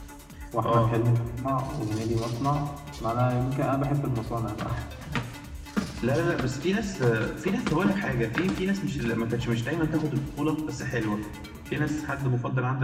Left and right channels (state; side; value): identical; both; correlation 1.00